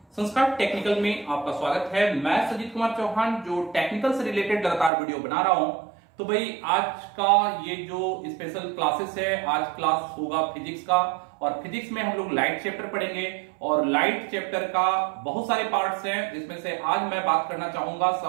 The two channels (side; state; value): left; drops out; at 4.9 s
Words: संस्कार टेक्निकल में आपका स्वागत है। मैं सजीत कुमार चौहान जो टेक्निकल से रिलेटेड लगातार वीडियो बना रहा हूं। तो भाई आज का ये जो स्पेशल क्लासेस है, आज क्लास होगा फिजिक्स का, और फिजिक्स में हम लोग लाइट चैप्टर पढ़ेंगे। और लाइट चैप्टर का बहुत सारे पार्ट्स हैं, जिसमें से आज मैं बात करना चाहूंगा